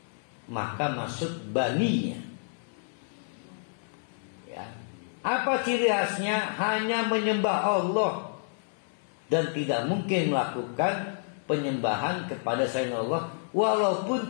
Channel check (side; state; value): right; silent; 58 dB below the other